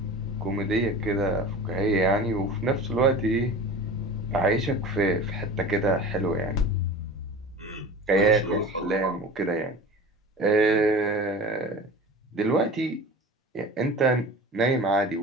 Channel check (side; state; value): both; normal; correlation 0.36